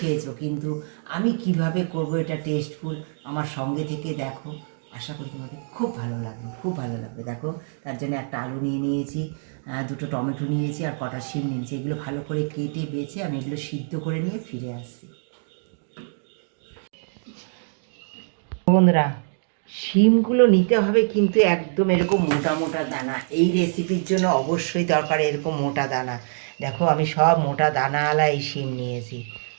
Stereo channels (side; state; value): left; silent; digital silence